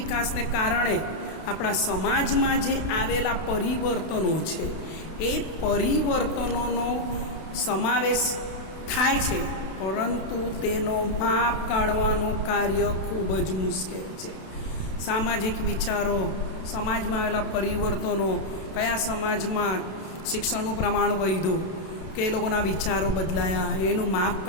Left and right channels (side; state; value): right; late; 32 ms